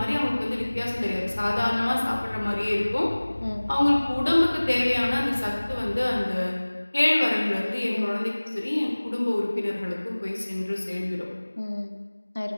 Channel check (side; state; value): both; inverted; correlation -1.00